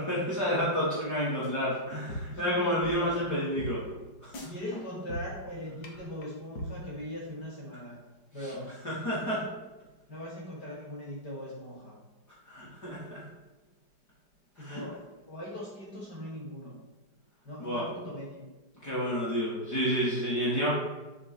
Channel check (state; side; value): late; right; 5.0 ms